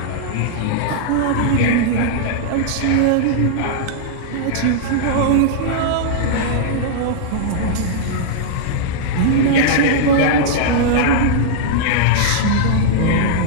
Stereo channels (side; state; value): both; different; correlation -0.02